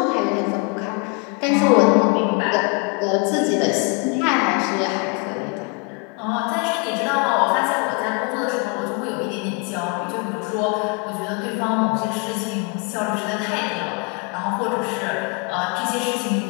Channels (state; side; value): quieter; right; 32.7 dB